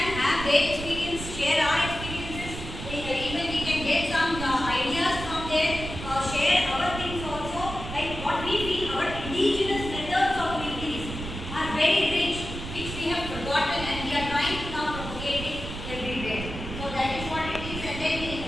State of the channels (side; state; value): right; noise; rumble, 8 dB below the sound